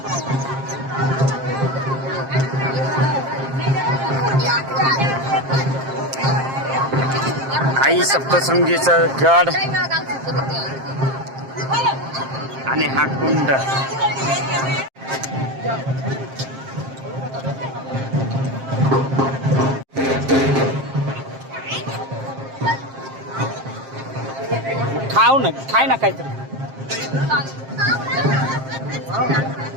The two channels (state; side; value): late; left; 7.5 ms